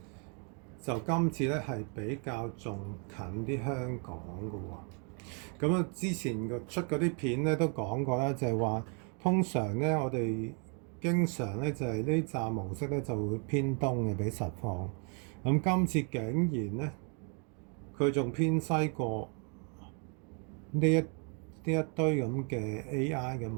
就今次咧係比較仲近啲香港嘅喎。咁啊，之前出嗰啲片咧都講過啦，就係話通常咧我哋經常咧就係呢站模式咧就會偏東嘅比實況。咁今次竟然咧佢仲偏西過呢一堆咁嘅 AI 嘅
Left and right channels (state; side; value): quieter; left; 38.9 dB